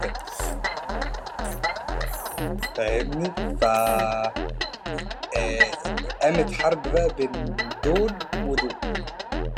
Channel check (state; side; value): identical; both; correlation 1.00